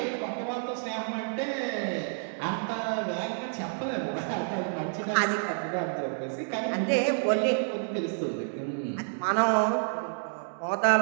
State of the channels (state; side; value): silent; left; digital silence